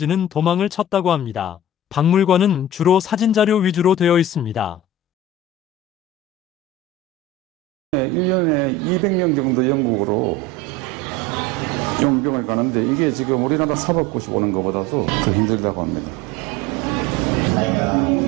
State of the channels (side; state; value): both; normal; correlation 0.33